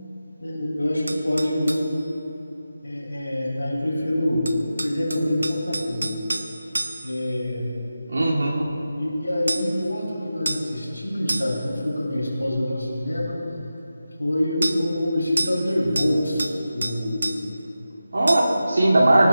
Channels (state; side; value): inverted; both; correlation -0.93